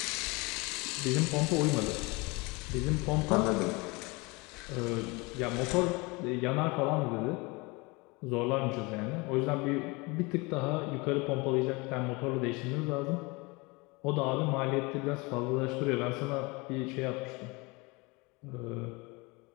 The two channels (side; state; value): right; quieter; 26.1 dB